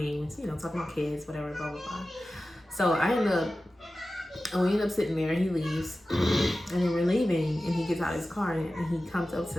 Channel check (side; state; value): both; normal; correlation 0.95